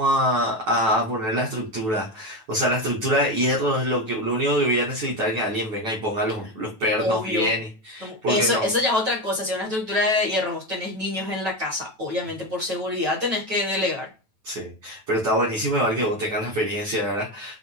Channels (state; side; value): late; left; 9.1 ms